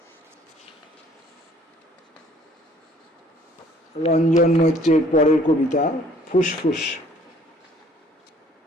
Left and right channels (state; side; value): normal; both; correlation 0.58